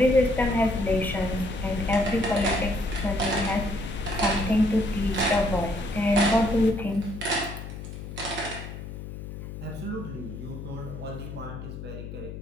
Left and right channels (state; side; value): noise; left; hum, 10 dB below the sound